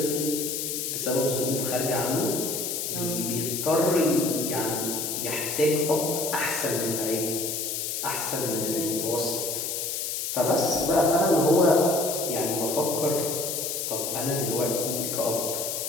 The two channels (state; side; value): noise; left; hiss, 2 dB below the sound